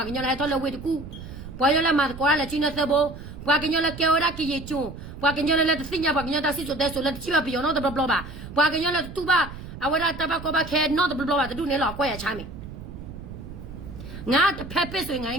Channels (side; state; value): right; noise; rumble, 12 dB below the sound